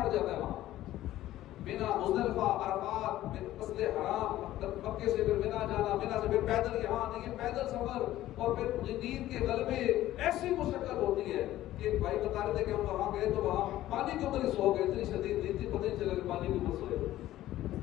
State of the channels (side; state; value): right; quieter; 14.4 dB